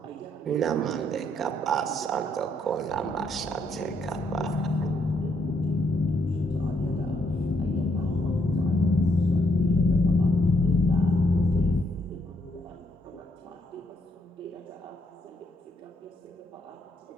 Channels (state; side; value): normal; both; correlation 0.73